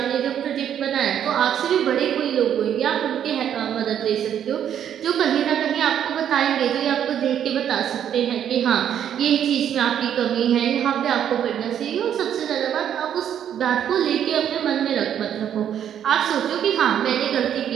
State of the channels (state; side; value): quieter; left; 9.6 dB